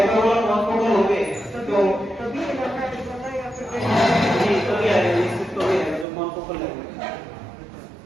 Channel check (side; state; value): left; drops out; at 6.1 s